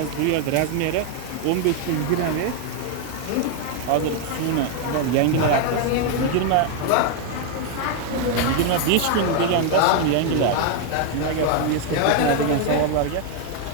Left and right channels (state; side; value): different; both; correlation 0.00